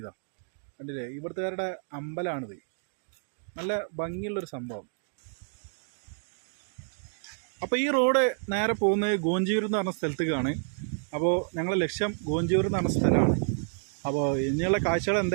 കണ്ടില്ലേ, ഇവിടുത്തുകാരുടെ അമ്പലമാണിത്. നല്ല ഭംഗിയുള്ളൊരു സംഭവം. അപ്പോൾ ഈ റോഡ് നേരെ പോകുന്നത് ഗോഞ്ചിയൂർ എന്ന് പറഞ്ഞ സ്ഥലത്തേക്കാണ്. അപ്പോൾ ഞങ്ങളുടെ ലക്ഷ്യം ഗോഞ്ചിയൂർ എന്ന് പറഞ്ഞ സ്ഥലമാണ്. അപ്പോൾ ഇനിയുള്ള കാഴ്ചകൾ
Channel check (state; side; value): silent; left; digital silence